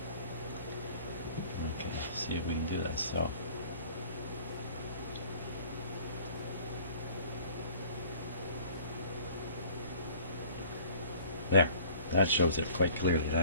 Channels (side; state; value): both; inverted; correlation -0.50